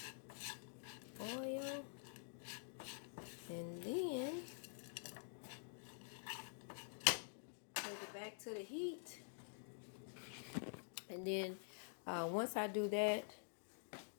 And then take it back to the heat. And then once I do that,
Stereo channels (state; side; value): silent; right; digital silence